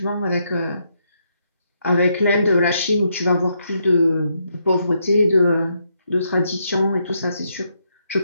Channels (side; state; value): both; inverted; correlation -0.78